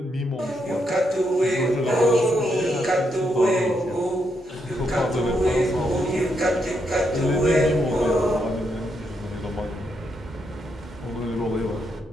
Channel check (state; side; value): normal; both; correlation 0.79